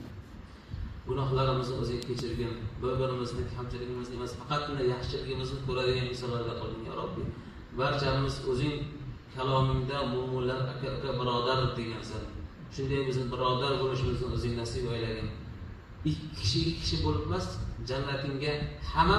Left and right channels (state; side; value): identical; both; correlation 1.00